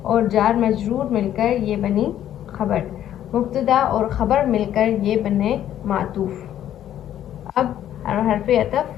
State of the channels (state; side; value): quieter; right; 11.3 dB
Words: اور جار مجرور مل کر یہ بنی خبر. مبتدا اور خبر مل کر یہ بنے معطوف. اب حرف